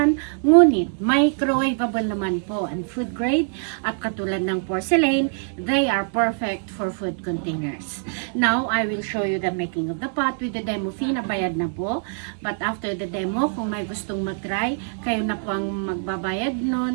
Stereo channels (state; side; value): silent; left; 63 dB below the other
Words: ngunit microwavable naman po and food grade at katulad ng porcelain, they are perfect for food containers. Now, I will show you the making of the pot with the demo fee na bayad na po. But after the demo, kung may gustong mag-try, kayo na po ang magbabayad